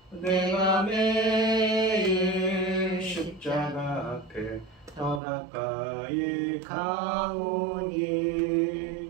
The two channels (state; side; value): drops out; left; at 5.2 s